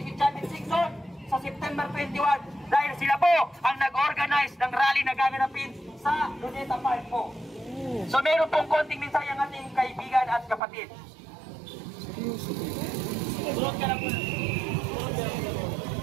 si Champion Sixon sa September 21 dahil sila po ang nag-organize ng rally na gaganapin sa Luneta Park po. So meron pong konting mensahe ang ating kaibigan at kapatid.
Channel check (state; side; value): drops out; left; at 10.6 s